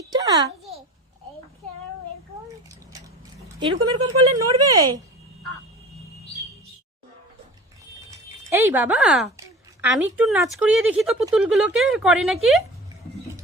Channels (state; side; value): normal; both; correlation 0.39